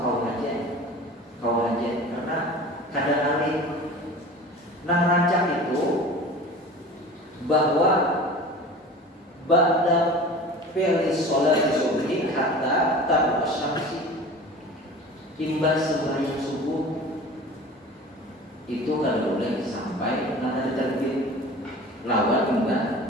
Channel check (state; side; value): normal; both; correlation 0.39